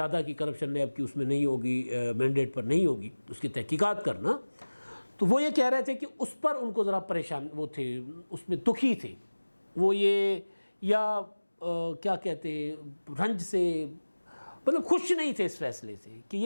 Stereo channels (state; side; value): inverted; both; correlation -1.00